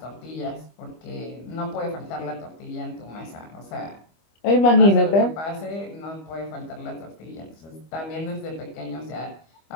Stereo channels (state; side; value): late; right; 25 ms